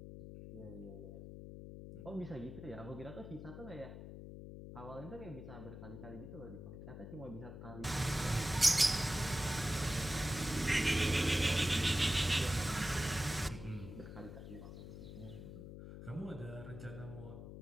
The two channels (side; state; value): left; noise; hum, 11 dB below the sound